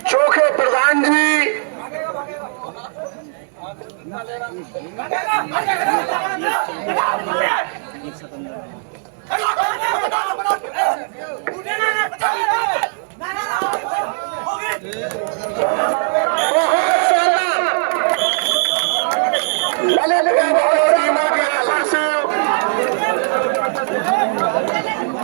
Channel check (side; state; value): left; silent; digital silence